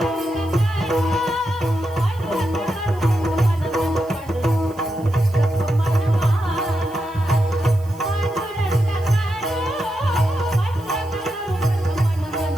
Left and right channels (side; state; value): right; noise; hiss, 25 dB below the sound